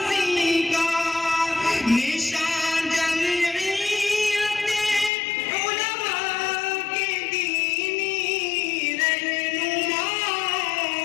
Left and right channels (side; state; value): right; drops out; at 5.1 s